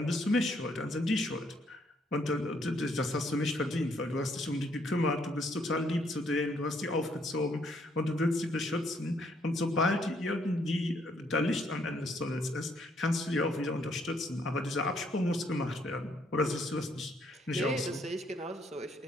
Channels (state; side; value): normal; both; correlation 0.69